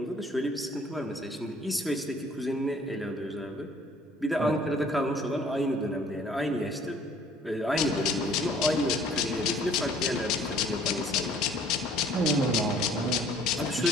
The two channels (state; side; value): normal; both; correlation 0.56